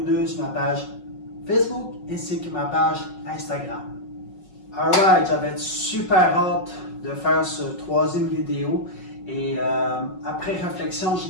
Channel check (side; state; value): right; late; 5.4 ms